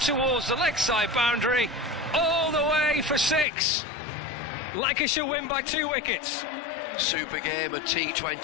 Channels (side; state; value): right; drops out; at 3.5 s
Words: the leg side boundary, all the way for 6. Lancashire win by 2 wickets. Super game of